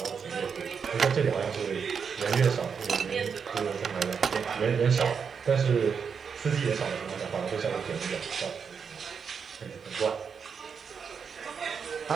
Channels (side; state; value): left; quieter; 6.3 dB